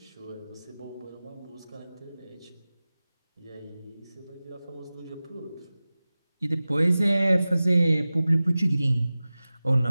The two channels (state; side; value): inverted; both; correlation -0.97